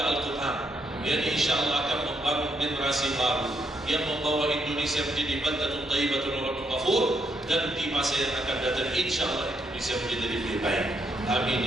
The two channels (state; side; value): normal; both; correlation 0.76